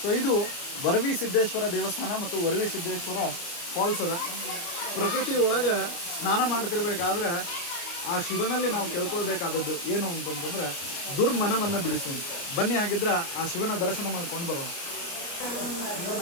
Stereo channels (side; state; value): right; late; 29 ms